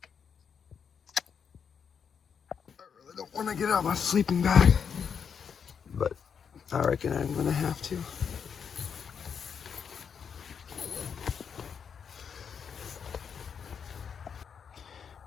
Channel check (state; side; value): quieter; right; 6.9 dB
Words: I really don't want to get out my sleeping bag, but I reckon I'm gonna have to.